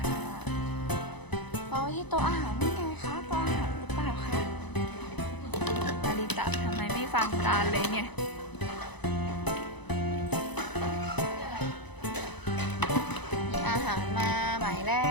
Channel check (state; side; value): late; right; 0.99 ms